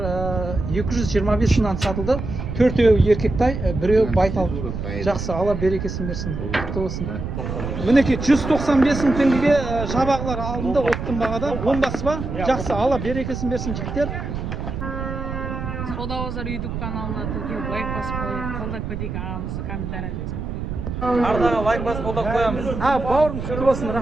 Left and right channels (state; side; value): noise; right; rumble, 5 dB below the sound